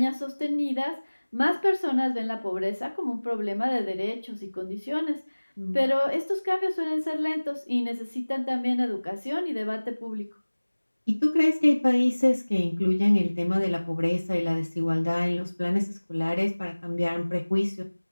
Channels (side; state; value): both; inverted; correlation -1.00